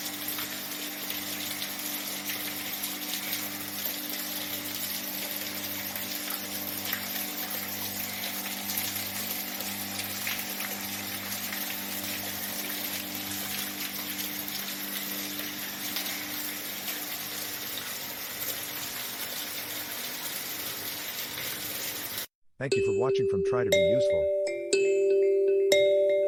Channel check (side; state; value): both; identical; correlation 1.00